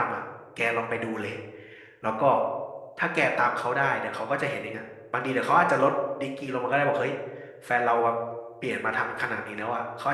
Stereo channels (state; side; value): identical; both; correlation 1.00